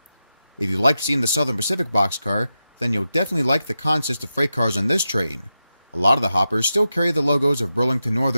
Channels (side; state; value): both; inverted; correlation -0.90